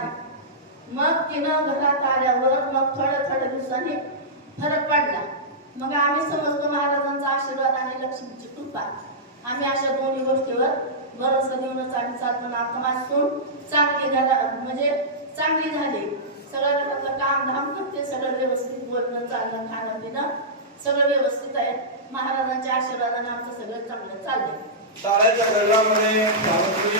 मग तिनं घरात आल्यावर मग थोड्या दिवसांनी फरक पडला. मग आम्ही समजतो महाराजांचा आशीर्वाद आणि लक्ष्मीची कृपा. आम्ही अशा दोन्ही गोष्टीवर भरोसा देऊनच आम्ही चालतो. आता माझी सून चांगली झाली. सगळं घरातलं काम धाम करते, सगळं व्यवस्थित, बोलणं चालणं खाणं पिणं सगळं व्यवस्थित आहे. महाराजांच्या आशीर्वादाने आमचं सगळं चांगलं चाललंय.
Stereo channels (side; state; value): both; normal; correlation -0.14